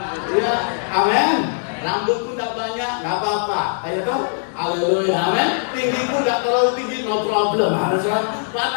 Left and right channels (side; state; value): right; silent; digital silence